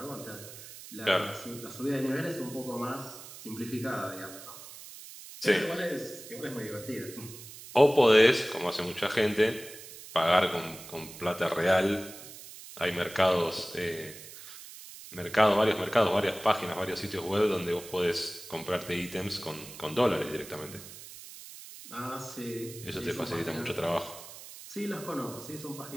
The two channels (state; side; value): noise; right; hiss, 15 dB below the sound